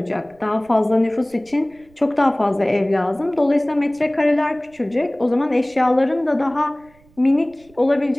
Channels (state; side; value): noise; right; rumble, 30 dB below the sound